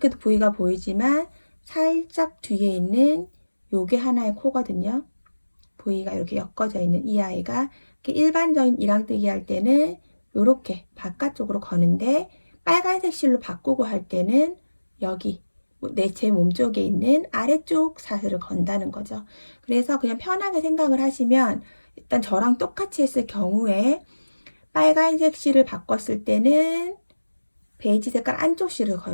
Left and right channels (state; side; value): inverted; both; correlation -1.00